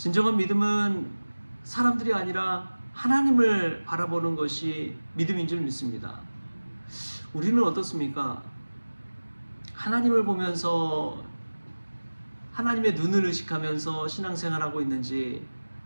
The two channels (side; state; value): both; inverted; correlation -1.00